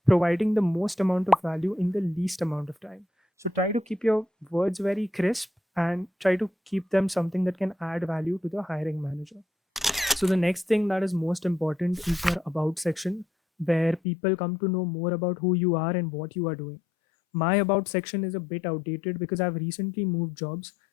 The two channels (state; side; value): drops out; right; at 14.0 s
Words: providing the most amount of value in the least amount of time. So try to keep your words very crisp and try to keep them something that can add value to the hiring manager. So the next thing that is most important is your about section, where people come to know more about who you are and what you are doing. My about section is a bit outdated because I've recently moved jobs.